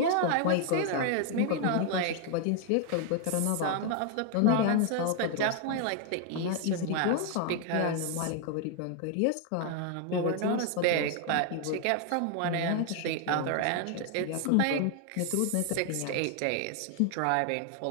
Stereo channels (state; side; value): different; both; correlation 0.00